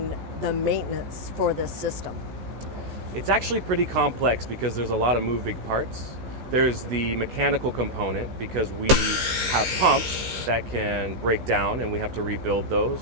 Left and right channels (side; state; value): left; late; 15 ms